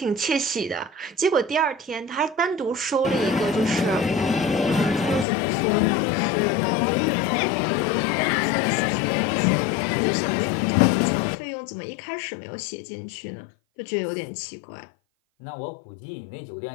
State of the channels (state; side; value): drops out; right; at 5.2 s